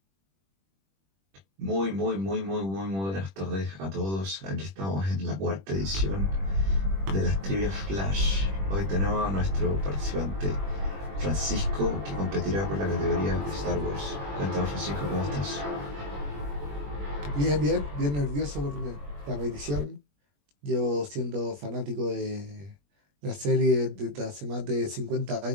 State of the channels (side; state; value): left; late; 21 ms